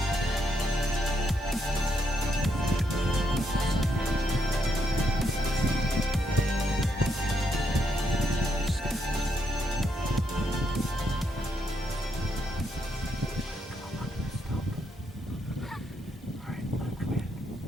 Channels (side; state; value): both; normal; correlation 0.78